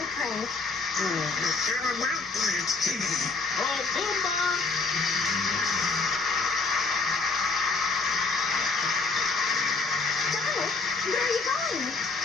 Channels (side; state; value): right; quieter; 4.1 dB